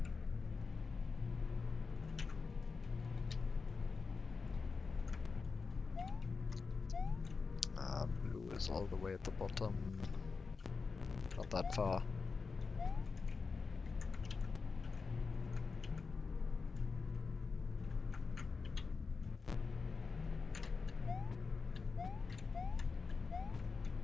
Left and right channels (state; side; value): quieter; right; 4.7 dB